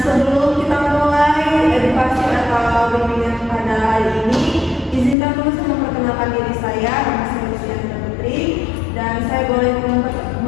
sebelum kita mulai edukasi atau bimbingan pada hari ini, izinkan dulu saya memperkenalkan diri saya, nama saya Luciana Putri, dan saya boleh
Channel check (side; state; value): right; drops out; at 5.2 s